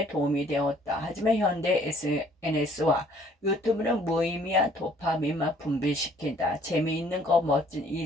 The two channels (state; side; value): normal; both; correlation 0.59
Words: 도움이 되었다. 하지만 현대 SNS와 유튜브는 무의미한 도파민만 분비시킨다. 재미있는 거, 멋진